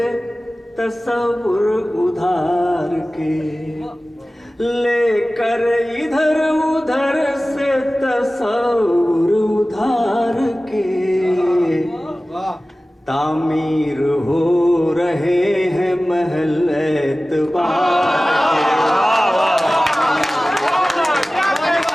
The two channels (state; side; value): normal; both; correlation 0.97